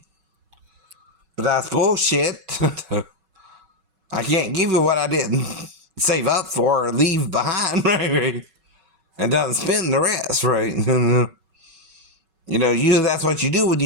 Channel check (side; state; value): left; late; 5.3 ms